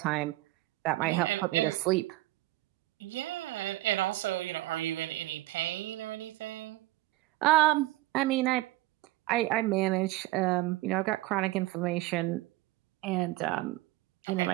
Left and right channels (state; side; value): quieter; left; 17.9 dB